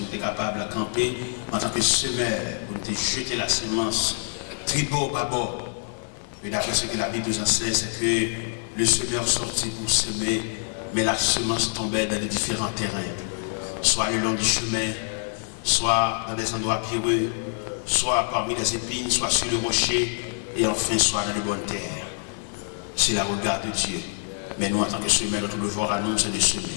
sommes capables de camper en tant que semeur, pour nous jeter la semence. Tribord, bâbord. Et d'après ce que la Bible nous enseigne, c'est que le semeur sortit pour semer, mais la semence tombait dans les différents terrains. Soit le long du chemin, soit dans des endroits pierreux, soit parmi les épines, soit sur le rocher, et enfin soit dans de bonnes terres. C'est la regard de Dieu. Mais nous, en tant que semeurs, notre devoir à nous, c'est de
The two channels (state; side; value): silent; right; 61 dB below the other